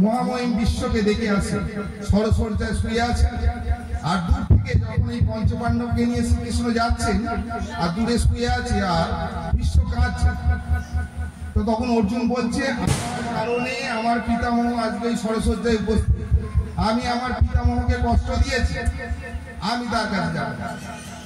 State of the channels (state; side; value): identical; both; correlation 1.00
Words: মহামহিম বিশ্বকে দেখে আসি। সরসজ্জায় শুয়ে আছে, আর দূর থেকে যখন এই পঞ্চপাণ্ডবকে নিয়ে শ্রীকৃষ্ণ যাচ্ছেন, আর দূরে শুয়ে আছে আর বিশ্ব কাঁদছে, তো তখন অর্জুন বলছে, আমার কারণে আমার পিতামহ আজকে এই সরসজ্জায় উপস্থিত। আমি আমার পিতামহকে কষ্ট দিয়েছি, আমি তার কাছে যাব।